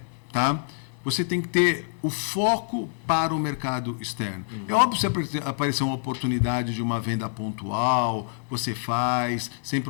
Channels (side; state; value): right; silent; digital silence